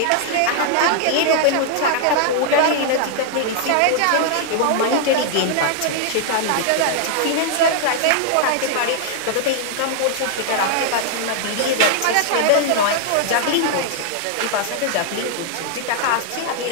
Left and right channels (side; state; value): both; different; correlation -0.01